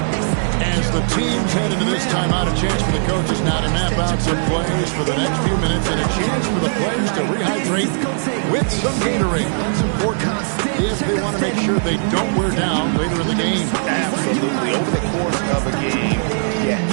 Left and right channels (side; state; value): left; silent; digital silence